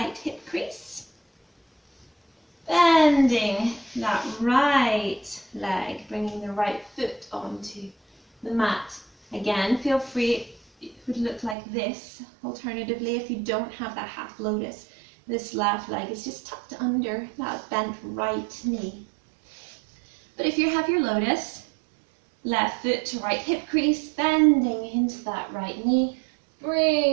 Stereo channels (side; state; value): left; drops out; at 11.6 s